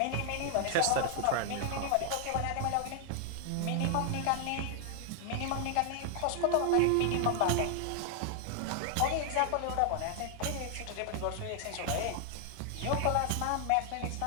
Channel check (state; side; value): different; both; correlation 0.00